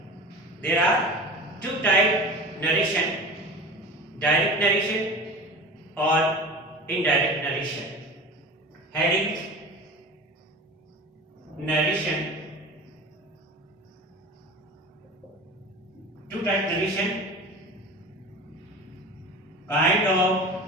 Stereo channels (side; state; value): both; normal; correlation 0.35